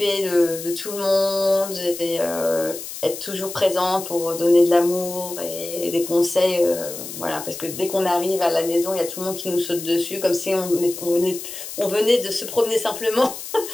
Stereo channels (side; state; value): left; noise; hiss, 10 dB below the sound